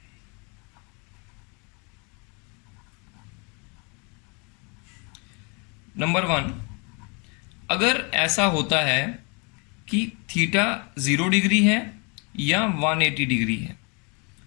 नंबर 1, अगर ऐसा होता है कि थीटा 0 डिग्री है या 180 डिग्री है,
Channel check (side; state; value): right; quieter; 32.8 dB